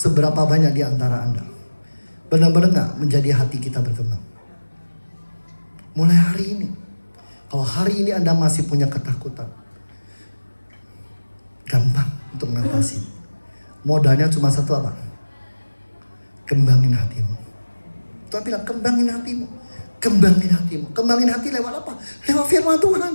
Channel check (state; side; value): inverted; both; correlation -1.00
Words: banyak di antara Anda benar-benar gak menjadi hati kita berkembang? Mulai hari ini. Kalau hari ini Anda masih punya ketakutan, gampang untuk mengatasi. Modalnya cuma satu apa? Kembangin hatimu. Tuhan bilang kembangin hatimu. Kembangin hatimu. Kembangin hati lewat apa? Lewat firman Tuhan.